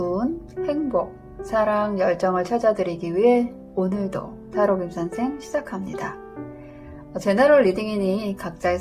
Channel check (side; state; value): both; identical; correlation 1.00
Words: 행복, 사랑, 열정을 찾아드리기 위해 오늘도 타로 김선생 시작합니다. 제너럴 리딩이니 각자의